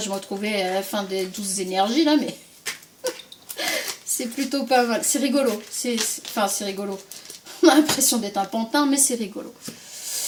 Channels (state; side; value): identical; both; correlation 1.00